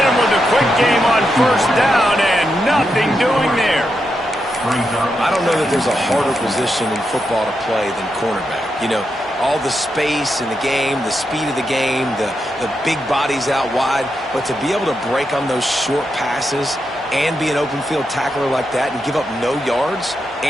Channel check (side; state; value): both; normal; correlation 0.85